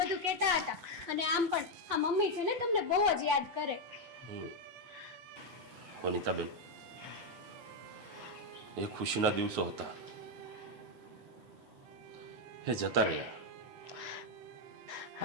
કહેતા હતા અને આમ પણ આ મમ્મી છે ને તમને બહુ જ યાદ કરે. વનિતાબેન, એ ખુશીના દિવસો હતા, એ જતા રહ્યા.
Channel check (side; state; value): left; late; 8.0 ms